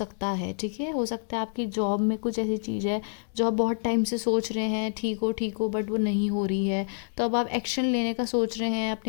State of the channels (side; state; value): right; silent; digital silence